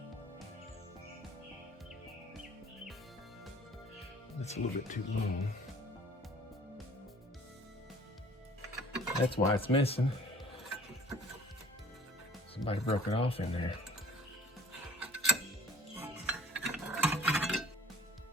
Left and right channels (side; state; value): both; normal; correlation 0.52